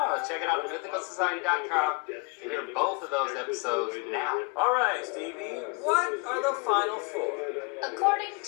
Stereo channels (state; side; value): quieter; right; 31.1 dB